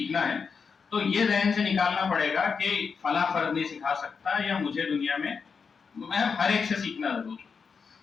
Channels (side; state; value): right; quieter; 5.6 dB